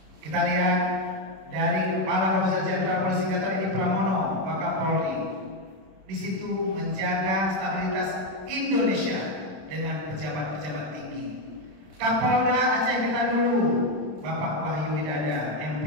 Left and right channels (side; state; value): left; late; 26 ms